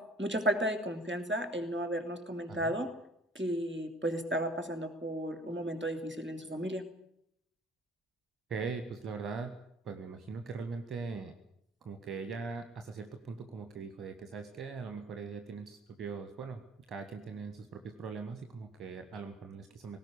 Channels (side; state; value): both; normal; correlation 0.51